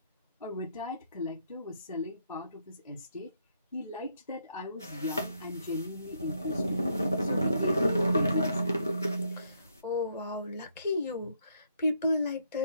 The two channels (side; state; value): both; inverted; correlation -0.74